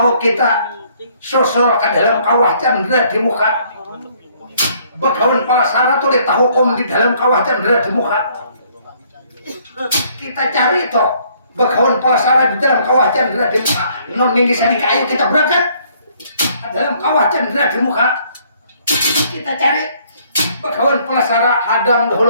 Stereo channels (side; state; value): both; inverted; correlation -0.63